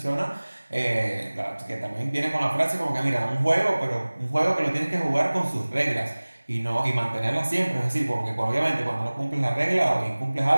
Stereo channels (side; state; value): both; inverted; correlation -1.00